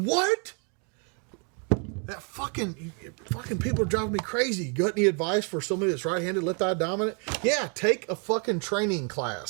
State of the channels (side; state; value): left; quieter; 36.6 dB